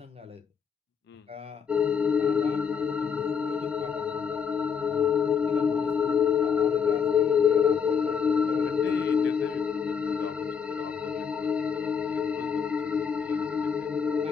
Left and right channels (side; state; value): right; quieter; 6.6 dB